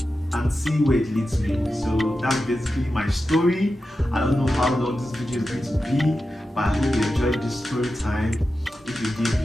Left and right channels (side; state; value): both; normal; correlation 0.91